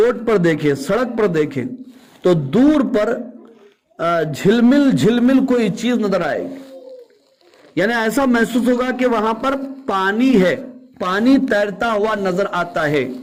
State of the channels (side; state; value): both; identical; correlation 1.00